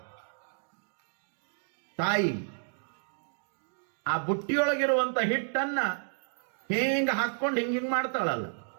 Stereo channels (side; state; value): left; silent; 57 dB below the other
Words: ತಾಯಿ ಆ ಬುಟ್ಟಿಯೊಳಗಿರುವಂತ ಹಿಟ್ಟನ್ನ ಹಿಂಗ ಹಾಕೊಂಡು ಹಿಂಗ ಮಾಡ್ತಾಳಲ್ಲ,